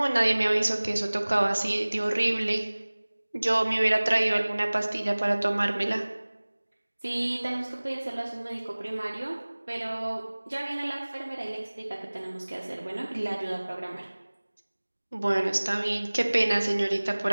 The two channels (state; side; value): inverted; both; correlation -1.00